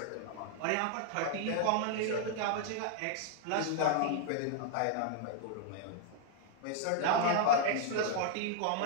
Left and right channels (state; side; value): different; both; correlation -0.01